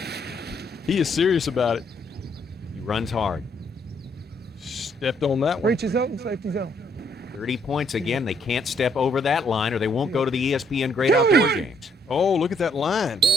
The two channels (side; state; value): both; normal; correlation 0.70